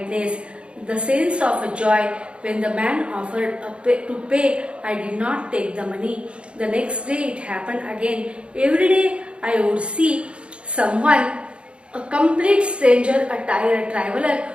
the sense of joy. When the man offered to pay, I did not take the money. The next day it happened again. Every day I would see someone, a complete stranger, a tired traveler,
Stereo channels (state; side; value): late; left; 0.057 ms